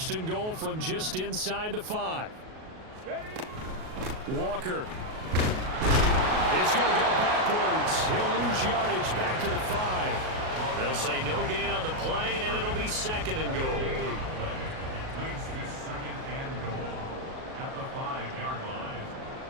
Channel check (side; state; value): left; late; 38 ms